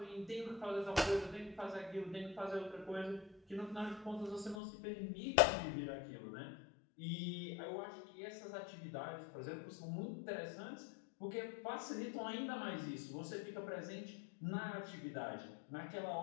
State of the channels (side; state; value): right; drops out; at 4.6 s